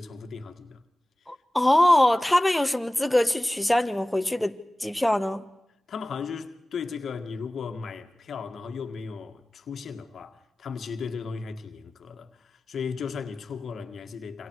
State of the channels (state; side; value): normal; both; correlation 0.97